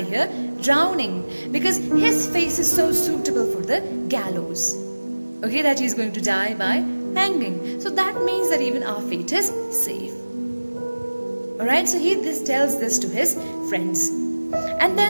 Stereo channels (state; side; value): inverted; both; correlation -1.00